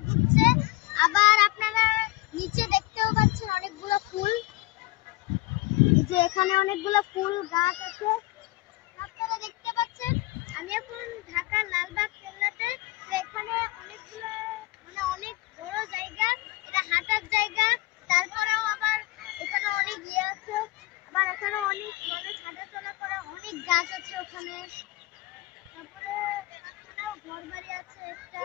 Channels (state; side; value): quieter; right; 20.2 dB